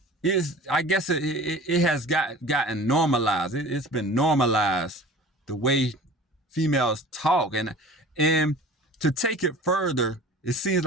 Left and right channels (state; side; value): normal; both; correlation 0.41